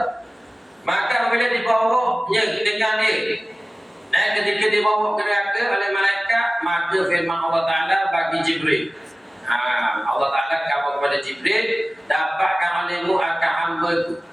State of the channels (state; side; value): normal; both; correlation 0.97